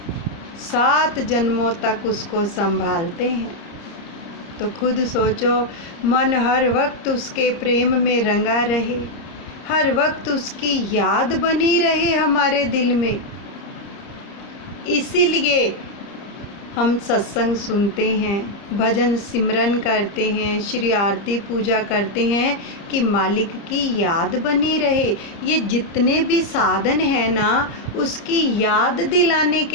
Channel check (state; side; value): late; right; 30 ms